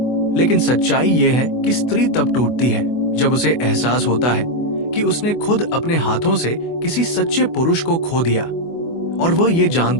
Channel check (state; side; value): late; right; 24 ms